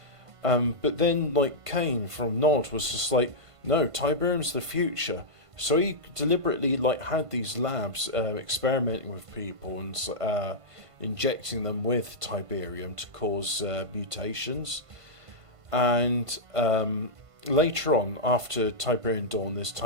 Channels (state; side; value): late; left; 1.5 ms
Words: But then, like Kane from Nod was just like, no, Tiberium's the future. So he deliberately had these labs experimenting with people and injecting them with Tiberium to cause mutations. And later on, after Tiberian Dawn, there's